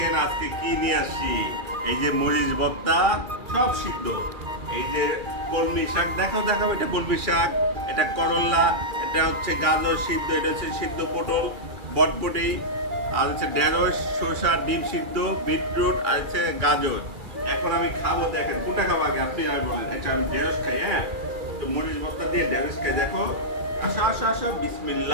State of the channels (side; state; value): left; late; 2.4 ms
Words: আজকে কি নিয়ে আসছি। এই যে মরিচ ভর্তা, সব সিদ্ধ। এই যে কলমি শাক, দেখাও এটা কলমি শাক, এটা করলা, এটা হচ্ছে গাজর সিদ্ধ, এটা হচ্ছে সিদ্ধ পটল, বটবটি, আর হচ্ছে ঢেঁড়স, শসা, ডিম সিদ্ধ, বিটরুট, আর হচ্ছে গাজর। এখন আমি খাবো, দেখেন কোনটা খাবো আগে আপনি আমি বলেন। আচ্ছা আমি ঢেঁড়স খাই, হ্যাঁ তো মরিচ ভর্তা দিয়ে ঢেঁড়স খাই। দেখো, আসো আসো আসো,